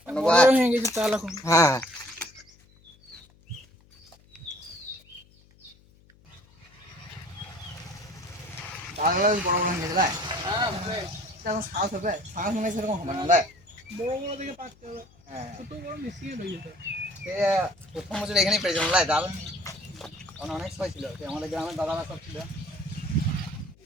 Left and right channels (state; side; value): noise; left; hum, 28 dB below the sound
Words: বড় হয়ে গেছে তাল এখন। হ্যাঁ তালগুলো বেশ বড় বড় হয়ে গেছে। এখন শ্বাস হবে, শ্বাস মনে সেরকম হবে না। বড় বড় দেখে পাচ্ছে হবে। হ্যাঁ ছোট বড় মিশিয়ে হয়ে যেত। সে প্রথম বছর এখানেই পেয়েছিলাম ডাল, তখন অনেক সময় ছিল, সে আমাদের গ্রামের দাদারা সব ছিল।